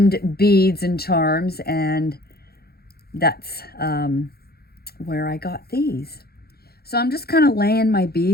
beads and charms. And that's where I got these. So I'm just kind of laying my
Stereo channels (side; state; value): right; late; 0.46 ms